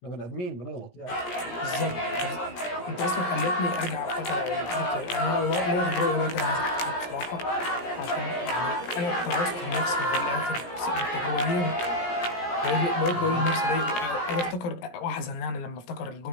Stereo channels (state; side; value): late; right; 17 ms